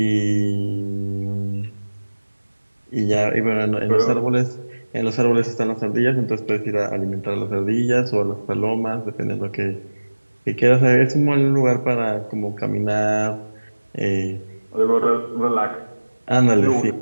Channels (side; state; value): both; inverted; correlation -1.00